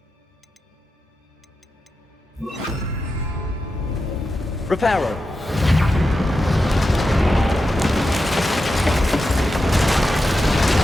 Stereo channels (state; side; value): normal; both; correlation 0.90